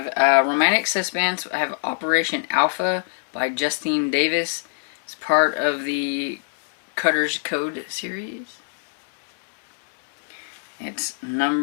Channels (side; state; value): right; silent; 63 dB below the other